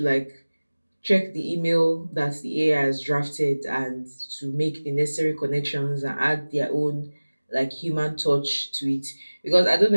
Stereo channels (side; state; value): both; inverted; correlation -1.00